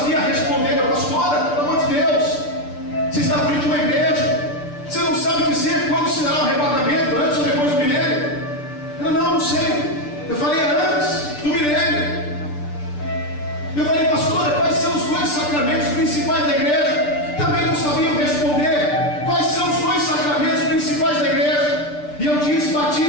responder. Pastora, pelo amor de Deus, você está à frente de uma igreja, você não sabe dizer quando se dará o arrebatamento, antes ou depois do milênio? Não sei. Eu falei: antes do milênio. Eu falei: pastora, quais são os dois sacramentos principais da igreja? Também não sabiam responder. Quais são os dois sacramentos principais da igreja? E eu disse:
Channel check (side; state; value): right; late; 6.8 ms